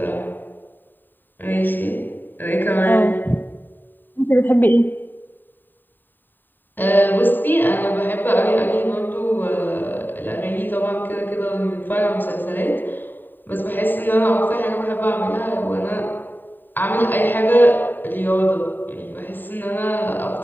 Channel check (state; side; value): late; right; 0.091 ms